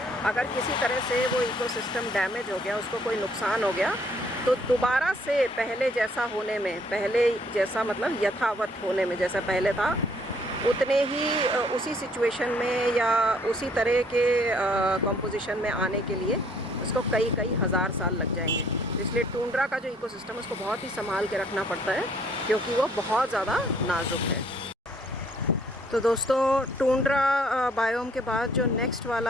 अगर किसी तरह से वो इकोसिस्टम डैमेज हो गया, उसको कोई नुकसान हो गया, तो दोबारा से पहले जैसा होने में, पहले जैसा मतलब यथावत होने में, जैसा पहले था उतने ही उसी सिचुएशन में या उसी तरह के कंपोजिशन में आने के लिए उसको कई कई हज़ार साल लग जाएंगे। इसलिए टुंड्रा का जो इकोसिस्टम है उसको बहुत ही संभाल के रखना पड़ता है, क्योंकि वो बहुत ज़्यादा नाजुक है। तो दोस्तों, टुंड्रा बायोम के बाद जो नेक्स्ट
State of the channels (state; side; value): normal; both; correlation 0.63